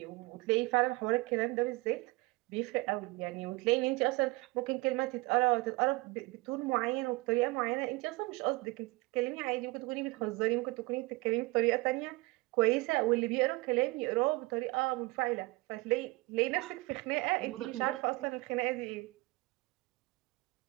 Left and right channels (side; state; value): left; quieter; 23.8 dB